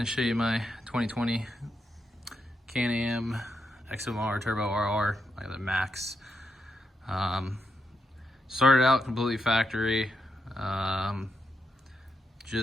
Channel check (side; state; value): both; normal; correlation 0.83